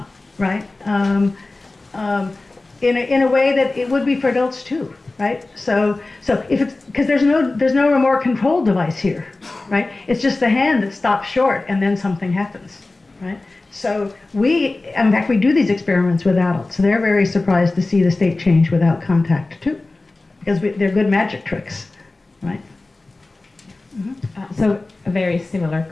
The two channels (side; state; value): right; quieter; 3.2 dB